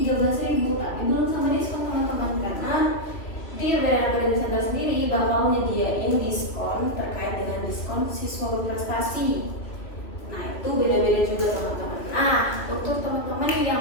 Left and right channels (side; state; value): right; late; 2.8 ms